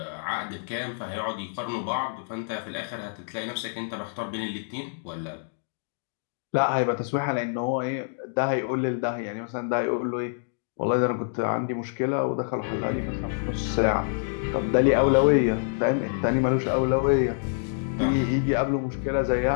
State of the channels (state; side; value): silent; right; digital silence